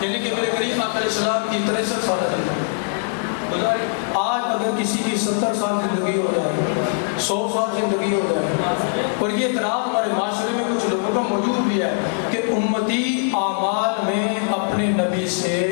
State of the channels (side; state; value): right; silent; digital silence